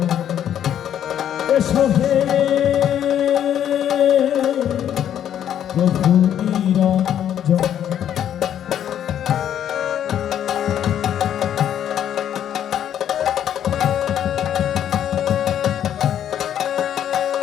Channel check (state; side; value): quieter; right; 10.1 dB